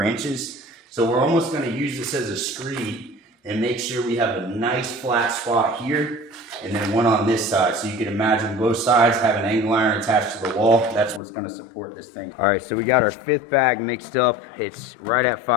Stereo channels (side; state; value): right; drops out; at 11.2 s